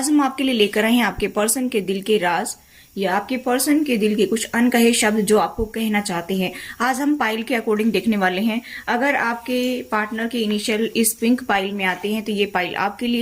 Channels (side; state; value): both; identical; correlation 1.00